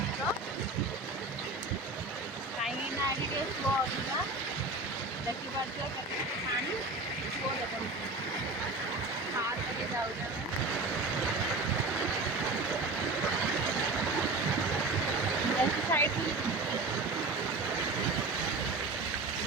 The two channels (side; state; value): left; quieter; 3.1 dB